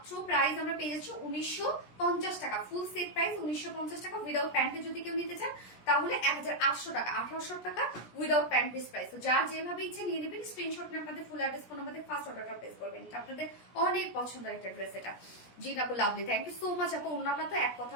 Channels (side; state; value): right; late; 17 ms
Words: প্রাইস আমরা পেয়ে যাচ্ছি 1950 টাকা। ফুল সেট প্রাইস 1950 টাকা। উইদাউট প্যান্টে যদি কেউ নিতে চান তাহলে 1800 টাকা, 1800 টাকা উইদাউট প্যান্ট পিস প্রাইস। তো যার যেভাবে ইচ্ছে নিয়ে নেবেন, স্ক্রিনশট নিয়ে আপনাদের full address phone number first অর্ডারটা প্লেস করবেন। এটা আপনাদের অনেক পছন্দের একটা ড্রেস এটা। জি আপু, lovely, thank you so much আপু। ওন্নাটা তো এক কথা